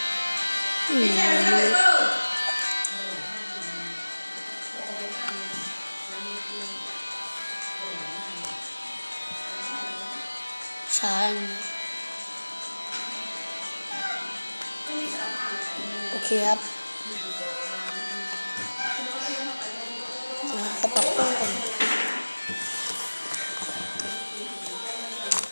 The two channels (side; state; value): both; inverted; correlation -1.00